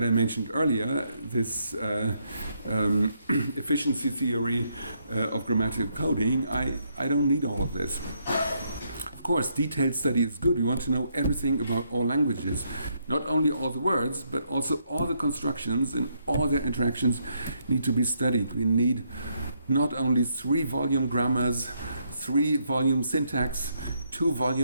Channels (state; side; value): inverted; both; correlation -0.75